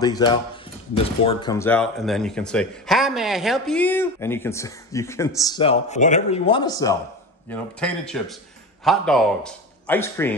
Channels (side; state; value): both; normal; correlation 0.28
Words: out, this board comes out, and then you can say, "Hi, may I help you?" And you can sell whatever you want to sell. You know, potato chips, hot dogs, ice